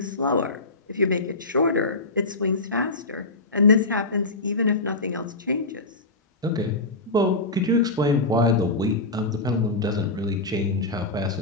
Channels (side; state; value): right; quieter; 3.0 dB